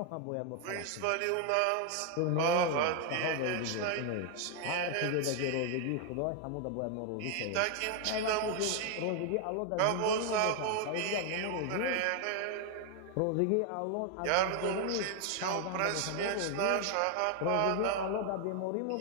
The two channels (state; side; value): different; both; correlation 0.00